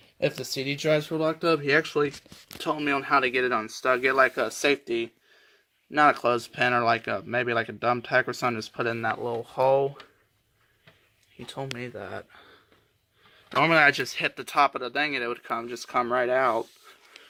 if the CD drives were locked up, he actually told me on how to get it unstuck. Get like a safety, not a clothespin or maybe like a dumb tack or something, just put it in that little hole. He told me that. Normally I just hit the top of the thing and it would come right out.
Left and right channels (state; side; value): identical; both; correlation 1.00